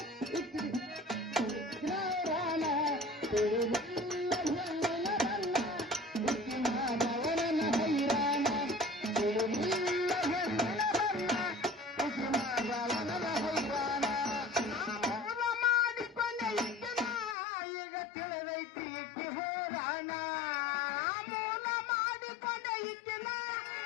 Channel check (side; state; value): right; drops out; at 17.4 s